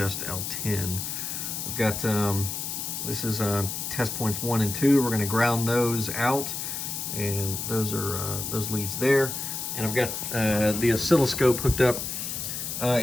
L10. I've got this is test points 1 and 2. We're going to ground those out, and those are those leads there. And I've got the oscilloscope hooked up.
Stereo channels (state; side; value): noise; left; hiss, 4 dB below the sound